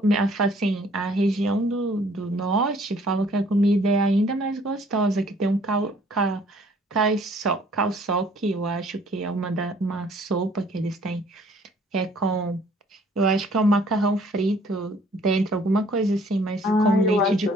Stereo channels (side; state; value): both; normal; correlation 0.58